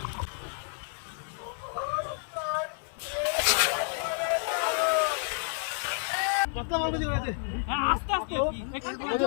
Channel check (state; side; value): silent; right; digital silence